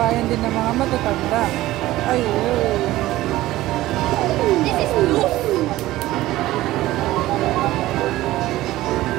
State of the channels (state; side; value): quieter; left; 16.4 dB